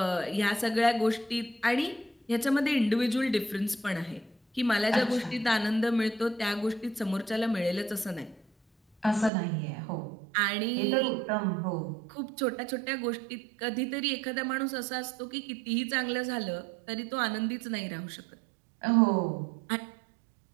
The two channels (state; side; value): drops out; left; at 9.3 s